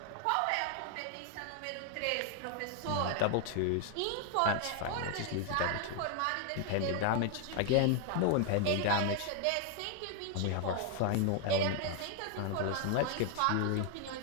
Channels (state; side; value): different; both; correlation 0.00